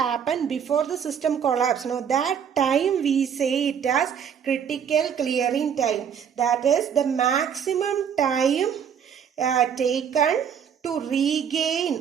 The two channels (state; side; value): quieter; left; 7.8 dB